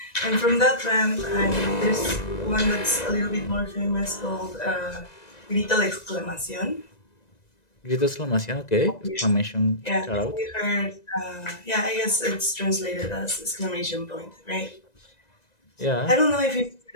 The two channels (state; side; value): late; right; 1.9 ms